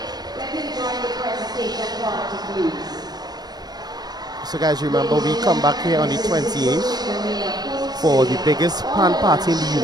So guys, remember we come back here on the 28th for the biggest pan party in the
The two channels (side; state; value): left; late; 0.19 ms